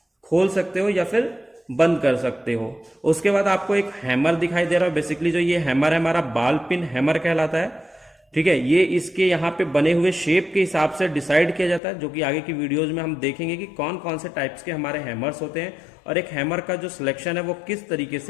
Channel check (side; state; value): right; drops out; at 11.8 s